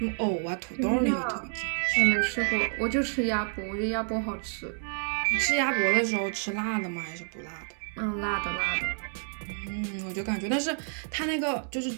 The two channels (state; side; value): silent; left; 58 dB below the other